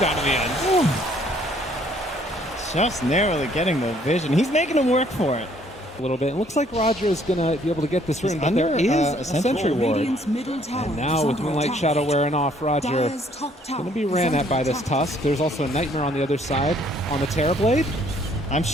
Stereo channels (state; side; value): normal; both; correlation 0.63